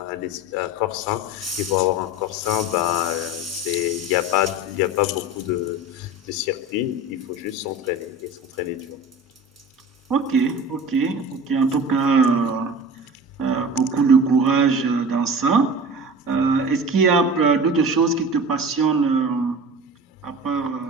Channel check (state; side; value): normal; both; correlation 0.35